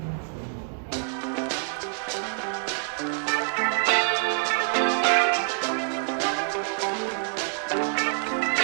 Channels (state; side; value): silent; left; 61 dB below the other